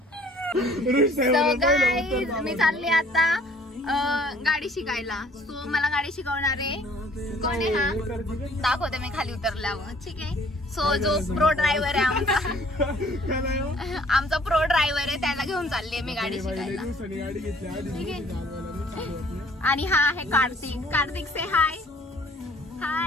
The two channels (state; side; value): normal; both; correlation 0.57